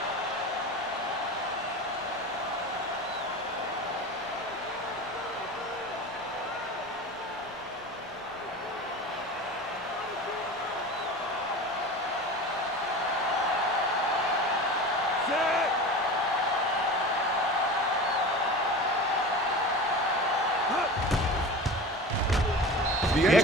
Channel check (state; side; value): normal; both; correlation 0.32